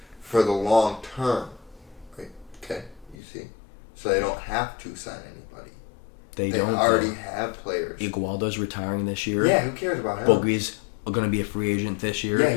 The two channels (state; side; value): drops out; right; at 3.2 s